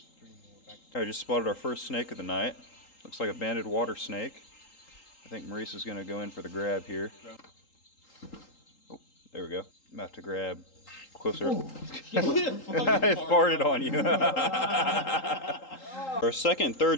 I just spotted our first snake of the night. Looks like a banded water snake. I think Maurice is going to go in for the grab here. Oh, there we go. I'm going to have to grab closer. I farted on you. Our second and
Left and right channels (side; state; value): right; late; 3.8 ms